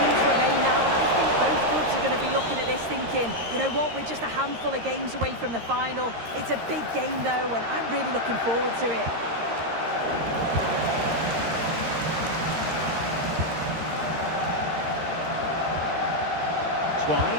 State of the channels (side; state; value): left; late; 13 ms